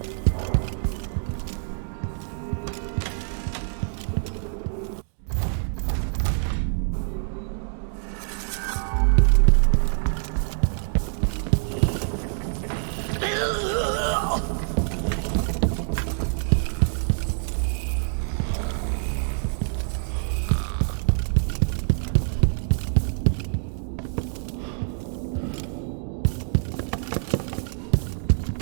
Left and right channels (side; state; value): left; silent; 61 dB below the other